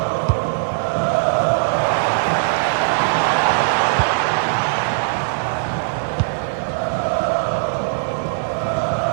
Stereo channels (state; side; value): silent; left; 65 dB below the other